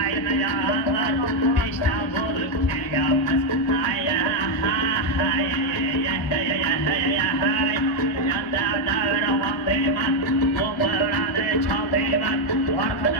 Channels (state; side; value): late; right; 1.3 ms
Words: yalang'ir Beshdan bo'lib kelganmiz Yanda davra olmayman Do'mbirani chaldiyman